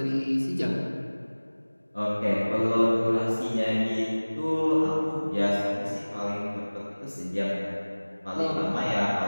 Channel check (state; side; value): inverted; both; correlation -1.00